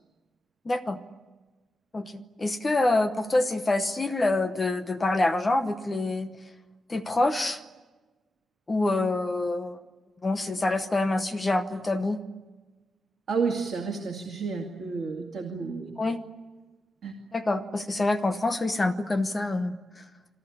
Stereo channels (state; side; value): normal; both; correlation 0.90